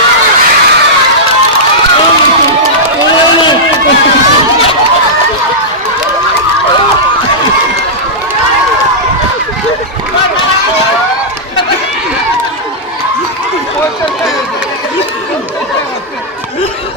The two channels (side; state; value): both; normal; correlation -0.11